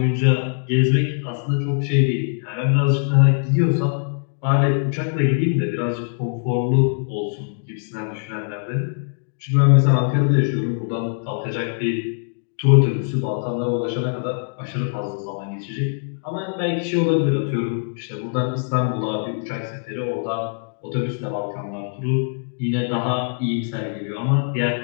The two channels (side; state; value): right; silent; digital silence